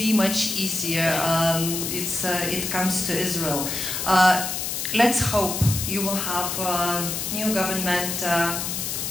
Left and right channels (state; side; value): noise; left; hiss, 3 dB below the sound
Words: much easier. It comes to Israel. Let's hope you will have a new government